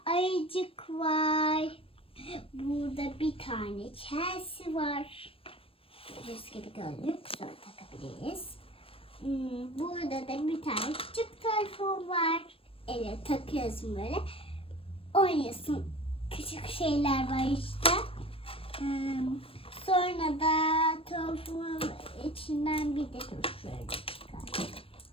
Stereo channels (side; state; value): right; late; 0.27 ms